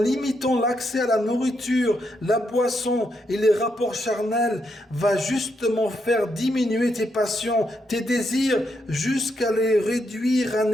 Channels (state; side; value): normal; both; correlation 0.80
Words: l'accès à la nourriture, la boisson et les rapports charnels, va justement faire diminuer tes passions, tes désirs, jusqu'à les réduire à